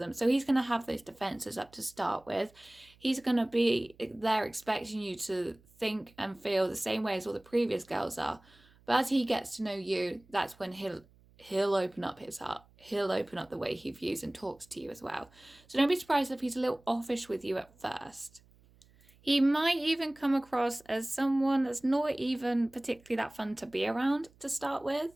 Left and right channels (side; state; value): right; noise; hum, 29 dB below the sound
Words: So he's going to have those defenses up to start with. He's going to be there expecting you to think and feel the same way as all the previous girls are. But as he gets to know you, that's when he'll open up his heart. He'll open up the way he views and talks to you as well. So don't be surprised if he's a little offish with you at first. He might even come across as someone that's not even particularly that fun to be around to start with.